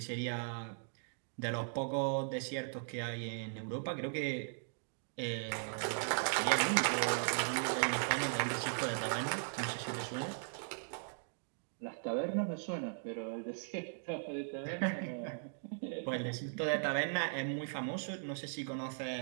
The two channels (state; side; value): silent; left; digital silence